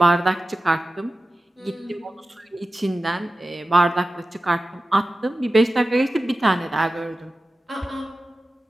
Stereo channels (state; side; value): normal; both; correlation 0.94